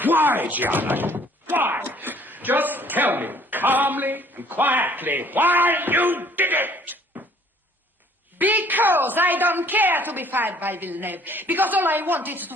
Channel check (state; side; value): normal; both; correlation 0.57